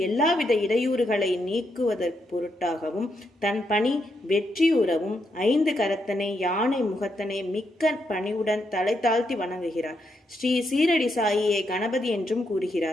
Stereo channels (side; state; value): both; normal; correlation 0.80